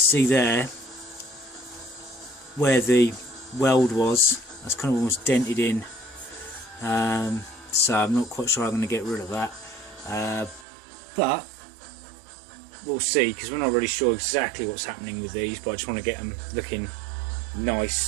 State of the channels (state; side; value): drops out; left; at 10.7 s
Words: there where the weld was. That's kind of almost dented in. So I'm not quite sure I'm going to get rid of that, but we'll see, because we're not really sure exactly what's happening with these, but I just want to get them looking